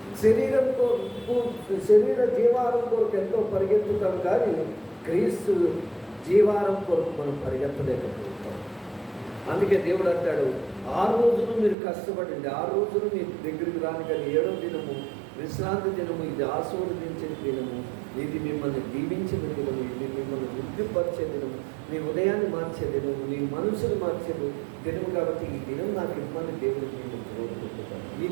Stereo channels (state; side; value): drops out; left; at 11.8 s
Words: శరీర జీవాహారం కొరకు ఎంతో పరిగెత్తుతాం, కానీ క్రీస్తు జీవారం కొరకు మనం పరిగెత్తలేకపోతాం. అందుకే దేవుడు అంటాడు, 6 రోజులు మీరు కష్టపడండి, 6 రోజులు మీ దగ్గరికి రాని, కానీ 7వ దినము విశ్రాంతి దినము, ఇది ఆశీర్వదించిన దినము, ఇది మిమ్మల్ని దీవించిన దినము, ఇది మిమ్మల్ని వృద్ధిపరిచే దినము, మీ ఉదయాన్ని మార్చే దినము, మీ మనసును మార్చే దినము. కాబట్టి ఈ దినం నాకు ఇమ్మని దేవుడికి నేను కోరుకుంటున్నాను. ఈ